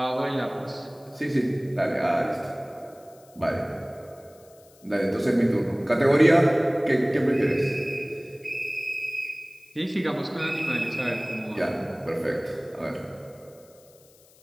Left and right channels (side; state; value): left; noise; hiss, 28 dB below the sound